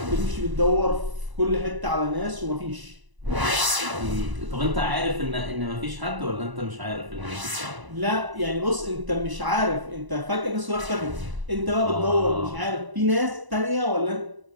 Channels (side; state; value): left; late; 1.0 ms